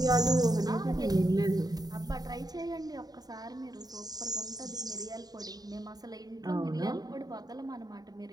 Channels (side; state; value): left; late; 0.19 ms